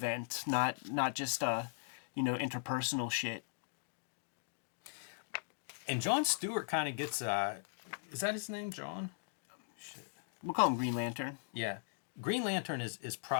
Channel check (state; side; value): silent; right; digital silence